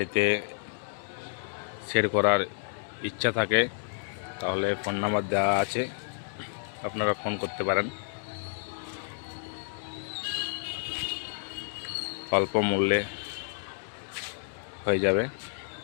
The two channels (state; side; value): silent; right; digital silence